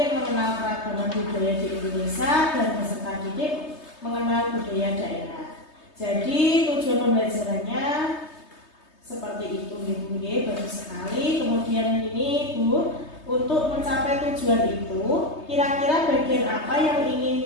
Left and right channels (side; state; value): right; late; 3.2 ms